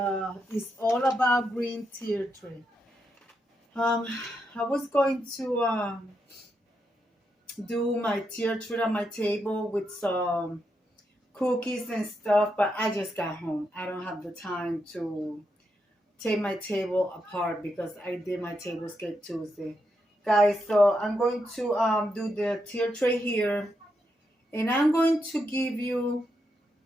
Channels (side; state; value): both; normal; correlation 0.83